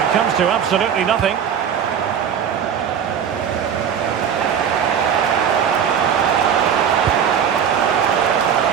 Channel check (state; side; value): quieter; left; 8.1 dB